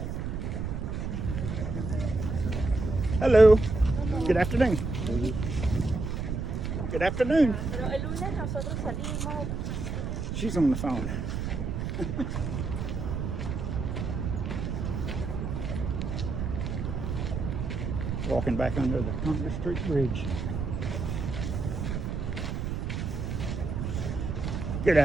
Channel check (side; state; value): right; noise; rumble, 3 dB below the sound